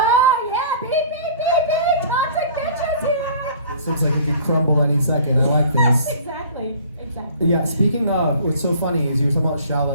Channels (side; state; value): both; inverted; correlation -0.49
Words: yeah, beep, beep, beep, beep, toxic bitches here. This looks like it could crumble any second. I like this. Exactly. Yeah, speaking of, what's so funny is you were talking about